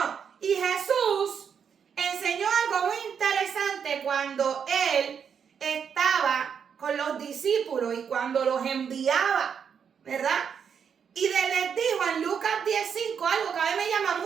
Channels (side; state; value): left; quieter; 7.2 dB